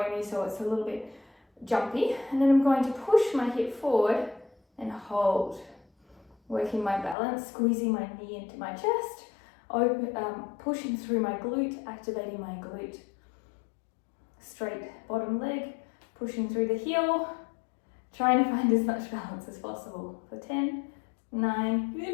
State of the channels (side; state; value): right; drops out; at 7.2 s